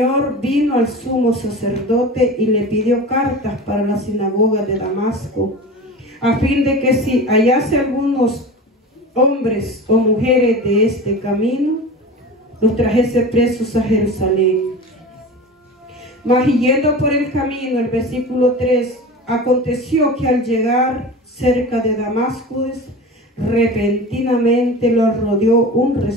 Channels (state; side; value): normal; both; correlation 0.32